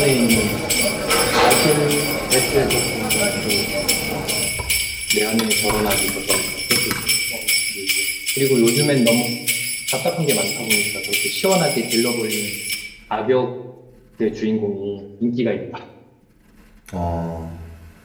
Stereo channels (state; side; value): identical; both; correlation 1.00